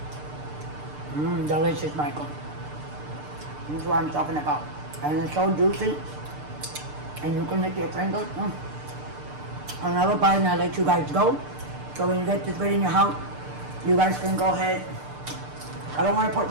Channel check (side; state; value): left; late; 6.7 ms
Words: Delicious, Michael. This is what I'm talking about. And it's so juicy. And you can lick your fingers. Another bite and I'll let you guys go. So when you get this video in your house, you guys can go ahead. I don't want to put